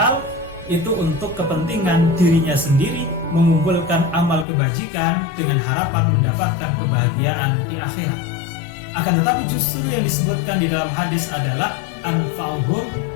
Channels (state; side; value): drops out; right; at 4.5 s